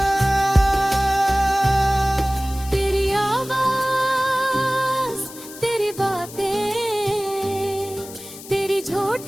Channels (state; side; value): noise; left; hiss, 16 dB below the sound